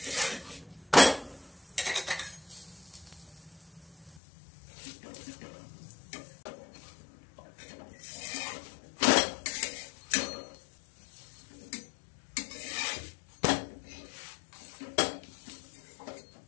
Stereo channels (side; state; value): right; drops out; at 4.2 s